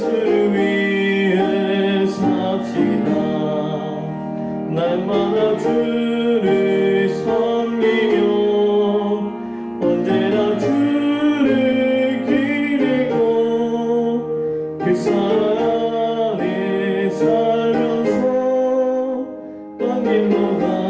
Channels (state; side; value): identical; both; correlation 1.00